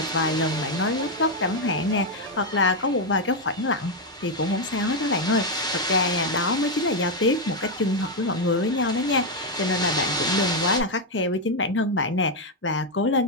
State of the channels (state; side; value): normal; both; correlation 0.03